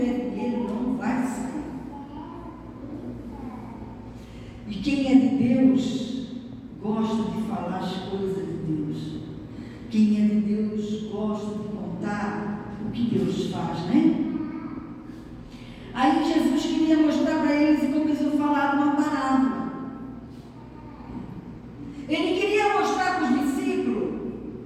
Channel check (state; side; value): identical; both; correlation 1.00